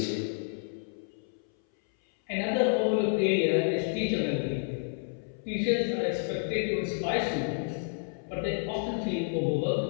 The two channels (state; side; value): silent; right; 58 dB below the other